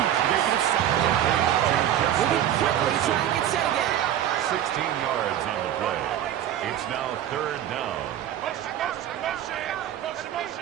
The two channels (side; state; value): left; quieter; 11.1 dB